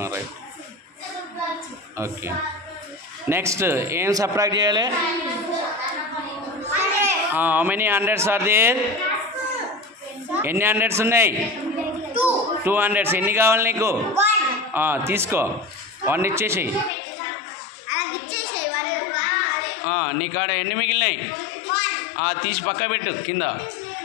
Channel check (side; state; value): right; drops out; at 16.9 s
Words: రైట్ ఓకే నెక్స్ట్ ఏం సబ్ట్రాక్ట్ చేయాలి how many hundreds are there ఎన్ని హండ్రెడ్స్ ఉన్నాయి 200 ఎన్ని కావాలి నీకు తీసుకో 1 ఇచ్చేసి నీ కాడ ఎన్ని మిగిలినాయి తీసి పక్క పెట్టు కింద